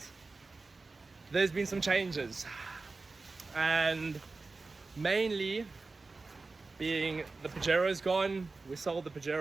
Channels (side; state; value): left; quieter; 3.8 dB